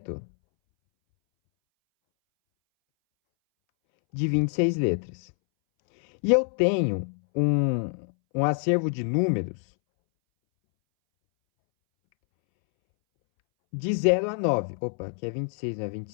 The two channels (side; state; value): right; silent; 61 dB below the other